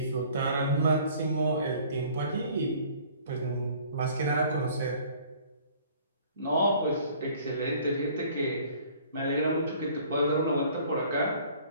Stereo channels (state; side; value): inverted; both; correlation -0.53